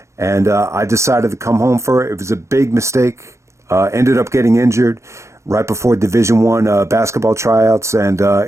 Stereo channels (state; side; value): late; left; 0.14 ms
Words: and I decided to come home for it. It was a big mistake. Ended up getting injured right before Division I basketball tryouts, and